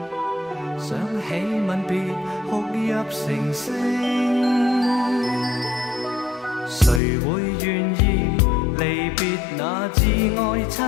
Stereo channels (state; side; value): drops out; right; at 7.0 s